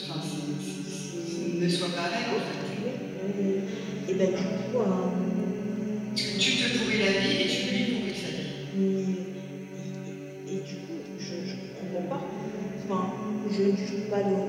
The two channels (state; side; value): identical; both; correlation 1.00